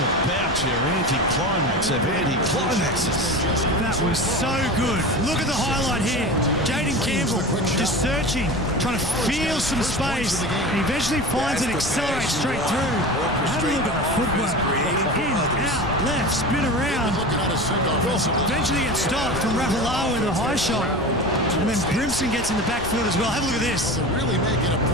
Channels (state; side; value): noise; left; rumble, 11 dB below the sound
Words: about your anti-climax of anti-climaxes. That was so good. Look at the highlight here. Jaden Campbell just searching, trying to feel some space, and eventually finds it, accelerates straight through. Have a look at the footwork. In, out, left, spin around. Eventually gets stopped from Rapalawa with a high shot. And then Brimson gets in the backfield as well. Have a look at this. Really making a